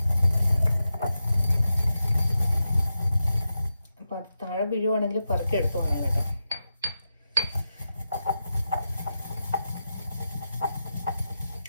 അപ്പം അത് താഴെ വീഴുവാണെങ്കിൽ പറക്കി എടുത്തു പോകണം കേട്ടോ.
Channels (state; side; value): inverted; both; correlation -0.90